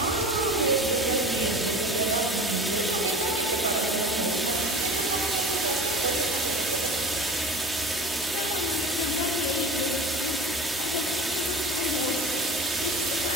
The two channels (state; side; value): normal; both; correlation 0.37